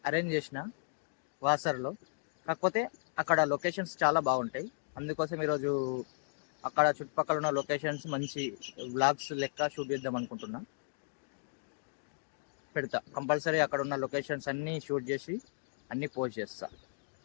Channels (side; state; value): right; silent; digital silence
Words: అరేంజ్ చేసిన వాసర్లో, కాకపోతే అక్కడ లొకేషన్స్ చాలా బాగుంటాయి. అందుకోసం ఈరోజు అక్కడ చుట్టుపక్కల ఉన్న లొకేషన్స్ మంచి వ్లాగ్స్ లెక్క షూట్ చేద్దాం అనుకుంటున్నా. పెడతా కంపల్సరీ. అక్కడ ఉన్న లొకేషన్స్ అన్నీ షూట్ చేసి అన్నీ పోస్ట్ చేస్తా.